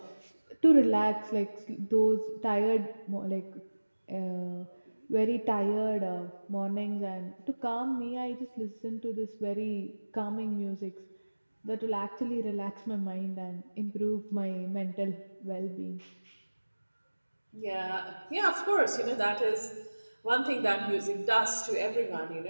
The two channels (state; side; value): inverted; both; correlation -1.00